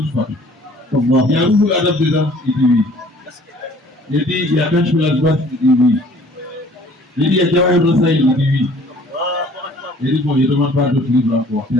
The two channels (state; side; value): normal; both; correlation 0.53